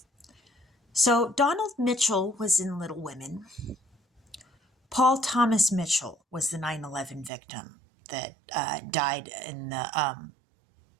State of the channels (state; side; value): drops out; left; at 7.3 s